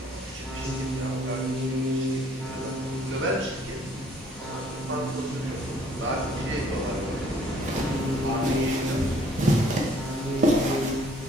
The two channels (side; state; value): both; normal; correlation 0.60